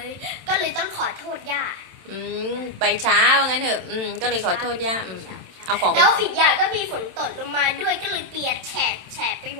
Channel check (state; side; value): late; left; 27 ms